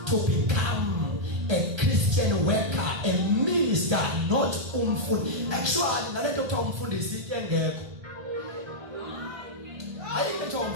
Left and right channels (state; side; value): late; left; 1.2 ms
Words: to become a Christian worker, a minister, not umfundisi. Actually, nalento kuthiwa umfundisi into engekho. Ayikho kuthiwa